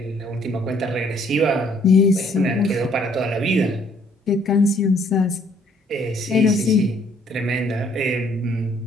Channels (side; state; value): both; normal; correlation 0.63